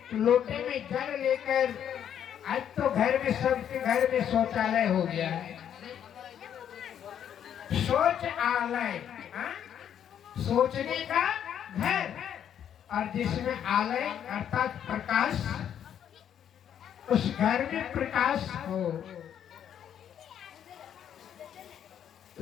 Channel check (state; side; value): quieter; right; 9.4 dB